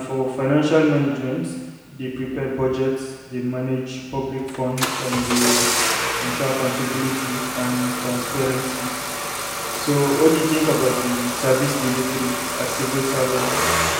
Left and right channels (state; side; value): identical; both; correlation 1.00